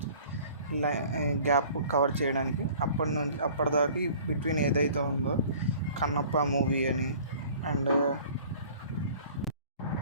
గ్యాప్ కవర్ చేయడానికి. అప్పటిదాకా బిట్వీన్ ఏదైతే ఉందో కన్నప్ప మూవీ అని అండ్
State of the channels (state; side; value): inverted; both; correlation -0.49